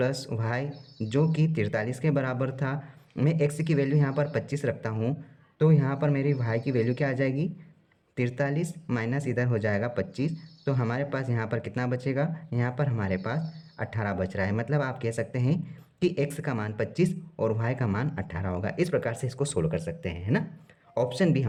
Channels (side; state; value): both; identical; correlation 1.00